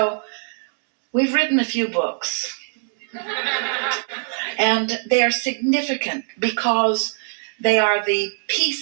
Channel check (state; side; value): silent; left; digital silence